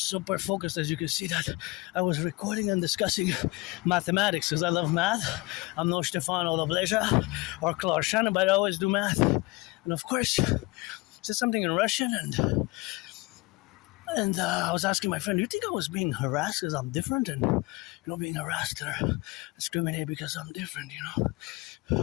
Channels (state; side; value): quieter; right; 23.4 dB